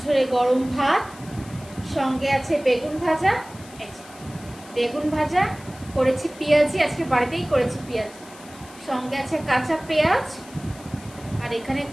গরম ভাত, সঙ্গে আছে বেগুন ভাজা। বেগুন ভাজা করেছি পেঁয়াজি, আজকে বাড়িতেই করেছি পেঁয়াজি। সঙ্গে আছে কাঁচা পেঁয়াজ, আর এখানে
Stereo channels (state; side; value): noise; left; hiss, 21 dB below the sound